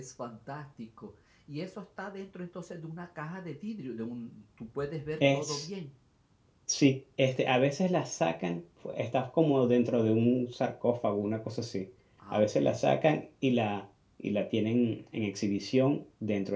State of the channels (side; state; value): both; identical; correlation 1.00